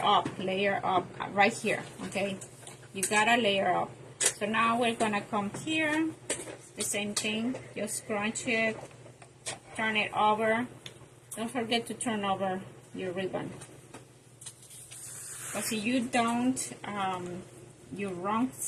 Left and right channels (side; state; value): both; identical; correlation 1.00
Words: up right here, okay? You gotta layer up. So now we're gonna come here, the same thing, just scrunch it, turn it over. Don't forget to turn over your ribbon. Because if you don't, your wrong